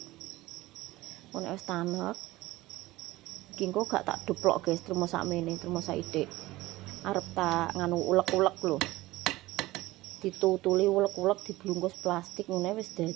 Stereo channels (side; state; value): left; quieter; 18.4 dB